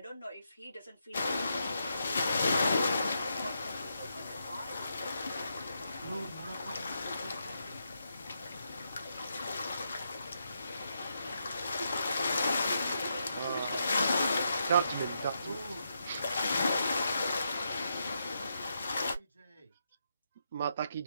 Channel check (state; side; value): inverted; both; correlation -0.82